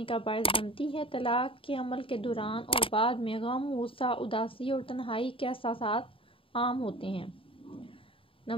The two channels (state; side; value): late; right; 0.26 ms